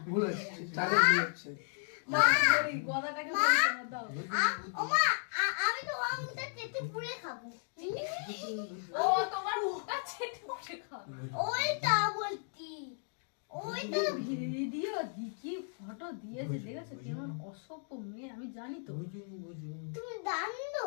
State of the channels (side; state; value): right; silent; digital silence